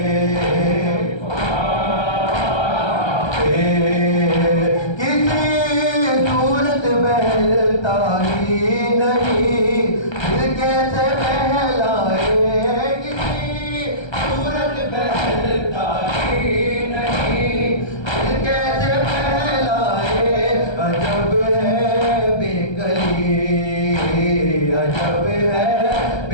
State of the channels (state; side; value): late; right; 1.3 ms